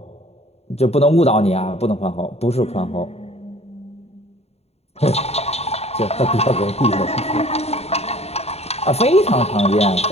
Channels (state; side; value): late; right; 0.30 ms